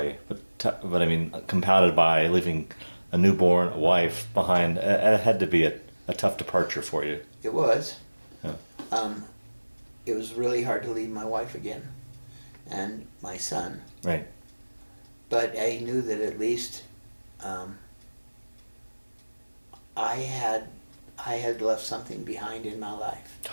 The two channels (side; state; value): both; inverted; correlation -1.00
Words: but I mean, compounded by leaving a newborn, a wife behind, it had to be a tough departure for you. It was. Yeah. It was really hard to leave my wife again, and my son. Right. But I knew that at least I had left something behind in my life.